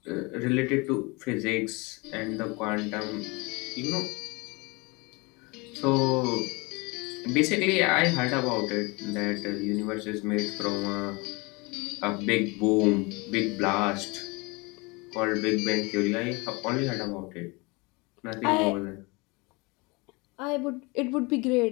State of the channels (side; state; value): right; quieter; 26.9 dB